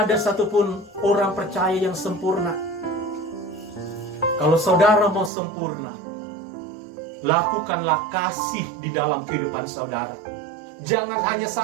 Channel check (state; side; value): drops out; left; at 5.3 s